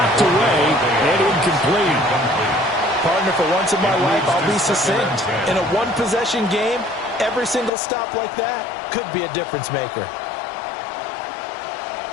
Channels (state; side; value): drops out; right; at 7.7 s